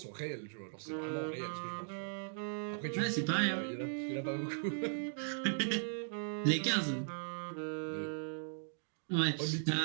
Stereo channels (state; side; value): silent; left; digital silence